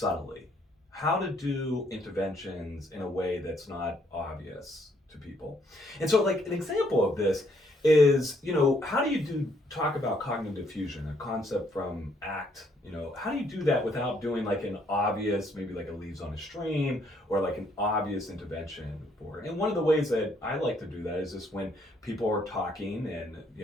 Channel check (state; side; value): normal; both; correlation 0.69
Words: How to do interventions in a way that's not obvious to people. And so like an example of this is, how do you talk about cognitive fusion, a concept from ACT? How do you do that without doing like an obvious, maybe like a leaves on a stream or like an obvious intervention for it? And one of the ways that I like to do that is just when people are talking and,